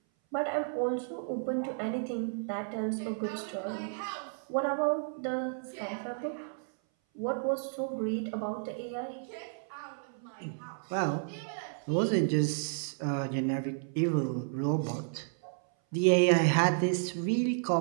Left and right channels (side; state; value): left; silent; 56 dB below the other